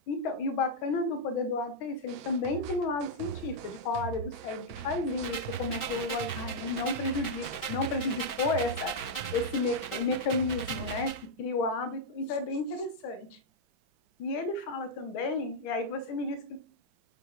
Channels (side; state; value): right; late; 5.3 ms